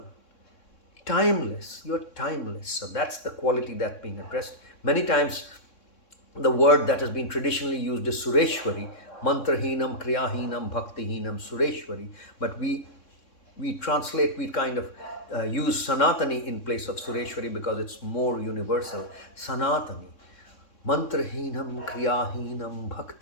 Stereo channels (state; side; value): late; right; 3.6 ms